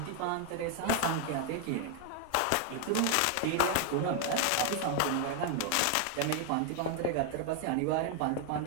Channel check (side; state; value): both; different; correlation 0.00